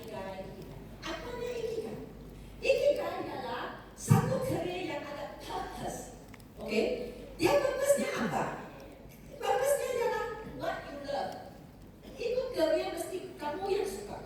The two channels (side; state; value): both; identical; correlation 1.00